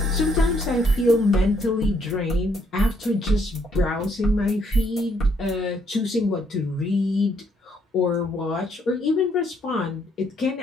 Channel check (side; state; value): both; normal; correlation 0.70